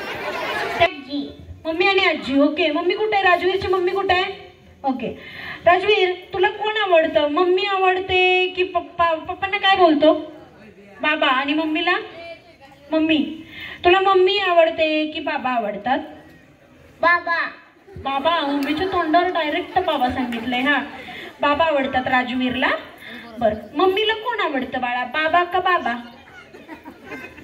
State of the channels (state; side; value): identical; both; correlation 1.00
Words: मम्मी आणि आजी. ओके. मम्मी कुठे आहे? राजवीरची मम्मी कुठे आहे? ओके. राजवीर तुला कोण आवडतं? मम्मी आवडते की पप्पा? पप्पांना काय बोलतो? बाबा. आणि मम्मीला? मम्मी. तुला मम्मी आवडते की बाबा आवडतात? बाबा. बाबा. मम्मीच्या तोंडावर डायरेक्ट बाबा सांगितलंय. हा बाबा आवडतात राजवीरला. बर. मम्मीला कोण आवडतं बाळा? बाबा का बाबा?